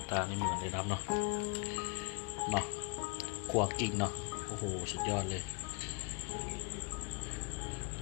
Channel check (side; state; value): right; quieter; 30.6 dB